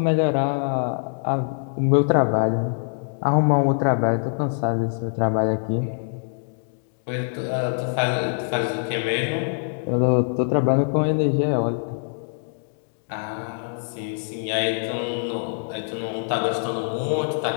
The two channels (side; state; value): right; silent; digital silence